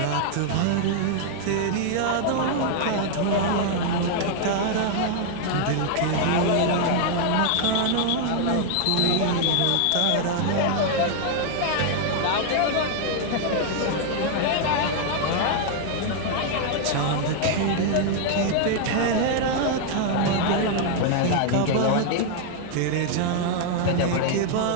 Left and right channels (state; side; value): different; both; correlation 0.00